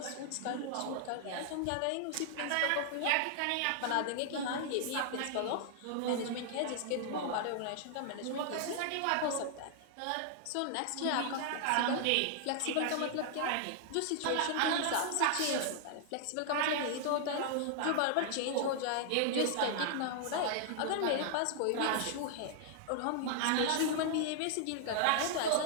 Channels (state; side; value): different; both; correlation -0.01